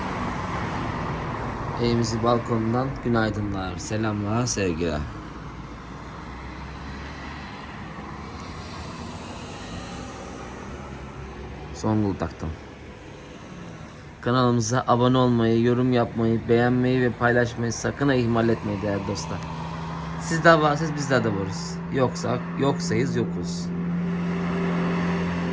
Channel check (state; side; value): identical; both; correlation 1.00